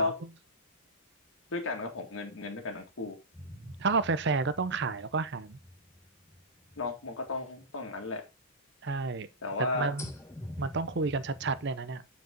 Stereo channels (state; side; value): normal; both; correlation -0.11